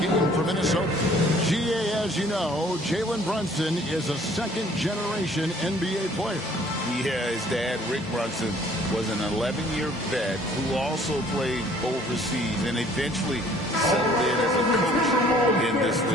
for Minnesota. GA, as you know, Jalen Brunson is a second-generation NBA player. Yeah, his dad, Rick Brunson, was an 11-year vet who also played overseas and eventually settled in as a coach in this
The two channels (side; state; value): both; normal; correlation 0.57